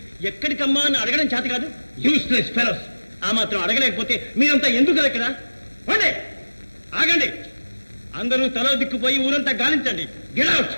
ఎక్కడికమ్మా అని అడగడం చేత కాదు. Useless fellows. ఆ మాత్రం అడగలేకపోతే మీరంతా ఎందుకు ఇక్కడ? ఆగండి. అందరూ తలో దిక్కుపోయి ఊరంతా గాలించండి. Get out.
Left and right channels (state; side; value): inverted; both; correlation -1.00